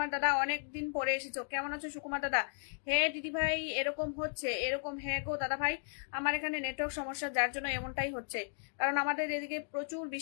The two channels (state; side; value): silent; right; digital silence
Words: দাদা, অনেকদিন পরে এসেছো, কেমন আছো সুকুমার দাদা? হ্যাঁ দিদি ভাই এরকম হচ্ছে, এরকম। হ্যাঁ গো দাদা ভাই আমার এখানে নেটওয়ার্ক সমস্যা, যার জন্য এমনটাই হচ্ছে, কারণ আমাদের এদিকে প্রচুর